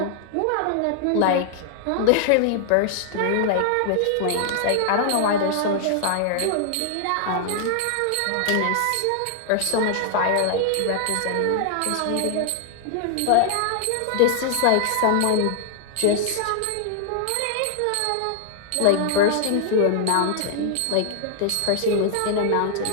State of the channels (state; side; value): different; both; correlation 0.00